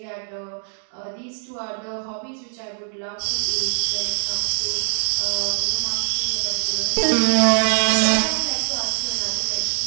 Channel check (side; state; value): left; silent; 64 dB below the other